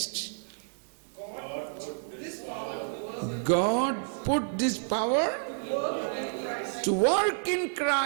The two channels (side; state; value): left; silent; digital silence